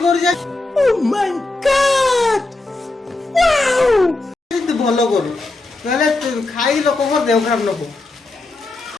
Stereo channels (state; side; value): quieter; right; 3.1 dB